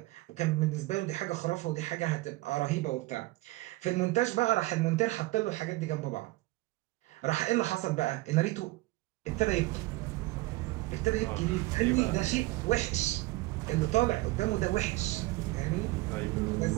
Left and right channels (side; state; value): left; quieter; 19.9 dB